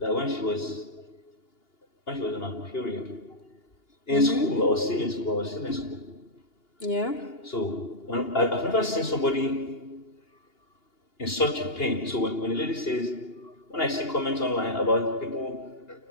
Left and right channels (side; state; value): right; late; 2.8 ms